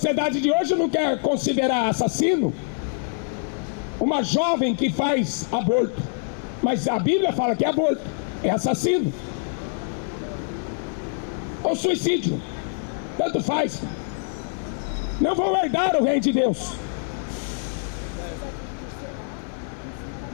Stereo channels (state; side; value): silent; right; digital silence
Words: de hoje não quer considerar assassino uma jovem que faz aborto, mas a Bíblia fala que é aborto, é assassino ou suicídio, tanto faz. Não vão herdar o reino de Deus.